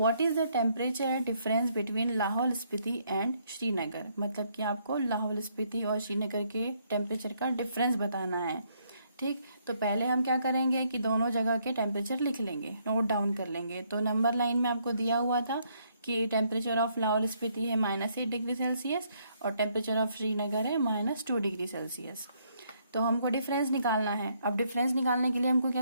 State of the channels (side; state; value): both; inverted; correlation -0.71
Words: is the temperature difference between Lahaul Spiti and Srinagar. मतलब कि आपको लाहौल स्पीति और श्रीनगर के टेम्परेचर का डिफरेंस बताना है। ठीक। तो पहले हम क्या करेंगे कि दोनों जगह के टेम्परेचर लिख लेंगे, नोट डाउन कर लेंगे। तो नंबर लाइन में आपको दिया हुआ था कि टेम्परेचर ऑफ लाहौल स्पीति है -8 डिग्री सेल्सियस और टेम्परेचर ऑफ श्रीनगर है -2 डिग्री सेल्सियस। तो हमको डिफरेंस निकालना है। अब डिफरेंस निकालने के लिए हमको